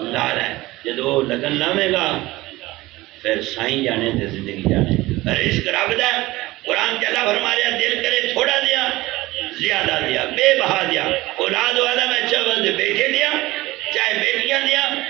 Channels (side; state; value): left; quieter; 19.0 dB